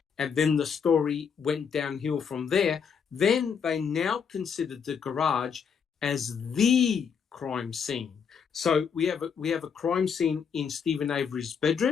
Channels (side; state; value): right; quieter; 6.7 dB